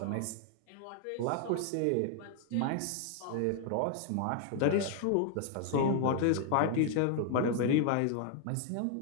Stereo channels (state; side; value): different; both; correlation 0.00